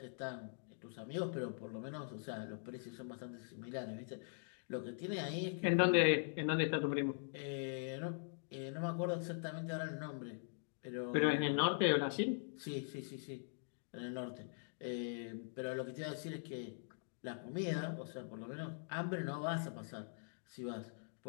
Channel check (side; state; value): right; silent; digital silence